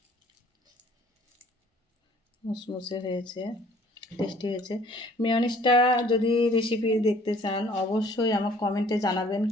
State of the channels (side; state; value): both; normal; correlation 0.55